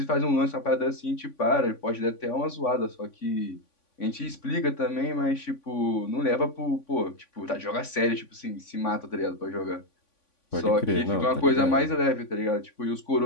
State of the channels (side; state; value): right; late; 3.5 ms